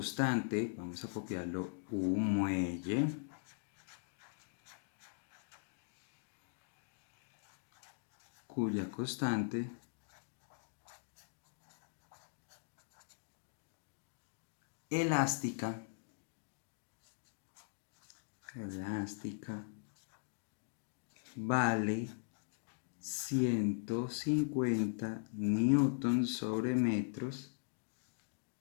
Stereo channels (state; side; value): silent; right; digital silence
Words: vamos a copiarlo, un muelle cuya constante elástica vale 150 newtons sobre metros,